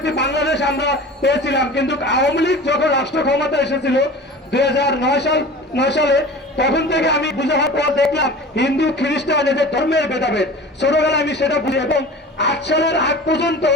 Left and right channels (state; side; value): normal; both; correlation 0.38